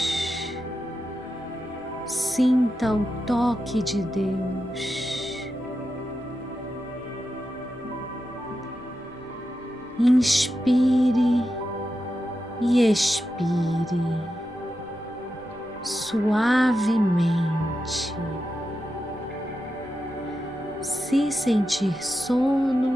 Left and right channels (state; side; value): normal; both; correlation 0.89